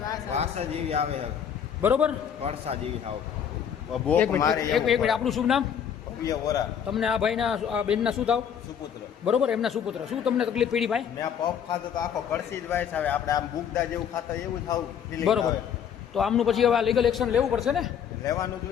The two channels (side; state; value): right; quieter; 8.3 dB